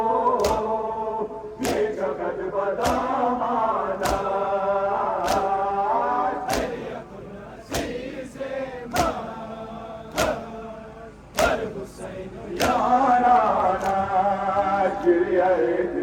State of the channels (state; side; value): identical; both; correlation 1.00